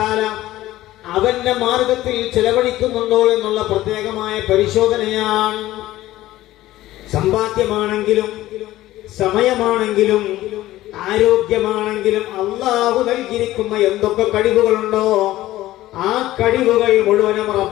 അവന്റെ മാർഗത്തിൽ ചെലവഴിക്കുന്നുണ്ടോ എന്നുള്ള പ്രത്യേകമായ പരിശോധനയാണ്. സമ്പാദ്യമാണെങ്കിലും സമയമാണെങ്കിലും ആരോഗ്യമാണെങ്കിലും അല്ലാഹു നൽകിയിരിക്കുന്ന എന്തൊക്കെ കഴിവുകളുണ്ടോ ആ കഴിവുകൾ മുഴുവനും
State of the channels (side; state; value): right; quieter; 15.6 dB